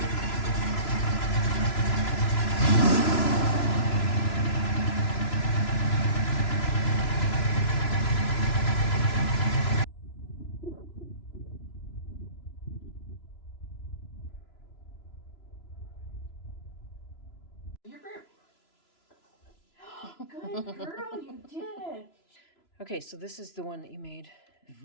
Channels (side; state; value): right; late; 3.0 ms